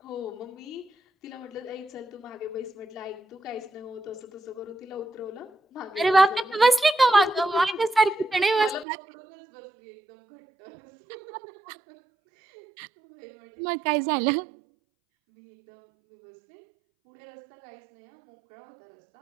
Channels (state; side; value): drops out; left; at 8.8 s